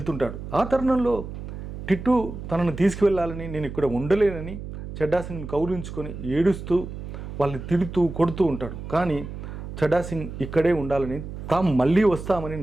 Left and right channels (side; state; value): right; noise; hum, 9 dB below the sound